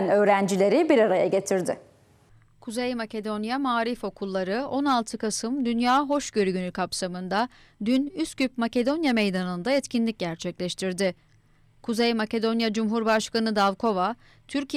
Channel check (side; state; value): both; identical; correlation 1.00